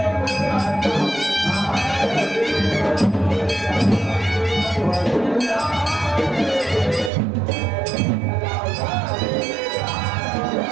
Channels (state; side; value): drops out; left; at 7.1 s